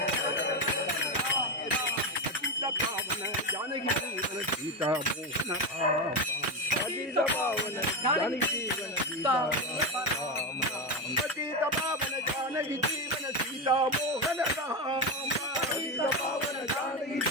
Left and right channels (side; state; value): both; normal; correlation 0.14